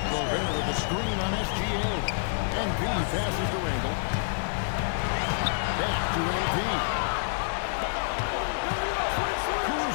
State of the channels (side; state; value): right; silent; digital silence